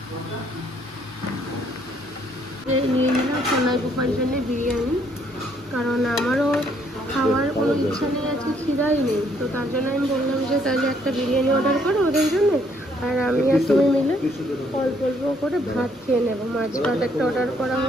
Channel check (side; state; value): both; normal; correlation 0.67